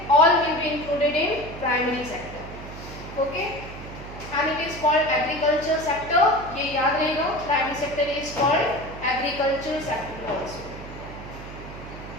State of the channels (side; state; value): right; noise; hum, 13 dB below the sound